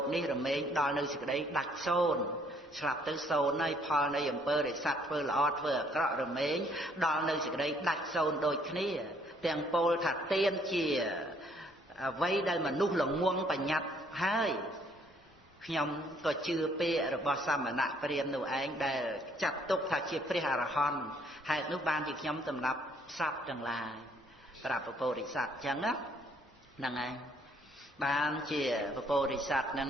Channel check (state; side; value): normal; both; correlation 0.65